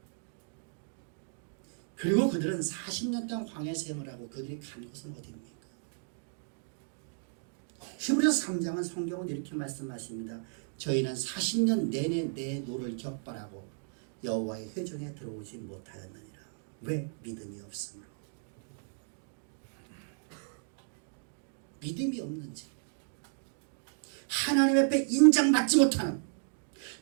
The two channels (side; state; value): left; silent; digital silence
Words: 그리고 그들은 40년 동안 광야 생활을 하고 그들이 간 곳은 어디입니까? 히브리서 3장은 성경은 이렇게 말씀하십니다. 저희는 40년 내내 내 노를 격발하고 여호와의 회중에 들어오지 못하였느니라. 왜? 믿음이 없으므로. 믿음이 없는지, 하나님 앞에 인정받지 못하는,